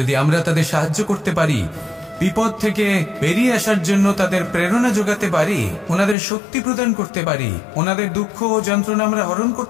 আমরা তাদের সাহায্য করতে পারি, বিপদ থেকে বেরিয়ে আসার জন্য তাদের প্রেরণা যোগাতে পারি, ওনাদের শক্তি প্রদান করতে পারি, ওনাদের দুঃখ ও যন্ত্রণা আমরা হরণ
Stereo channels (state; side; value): drops out; right; at 6.2 s